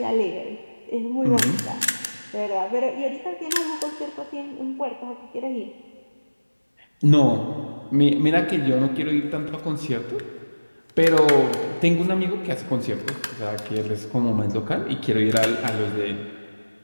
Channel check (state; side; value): inverted; both; correlation -1.00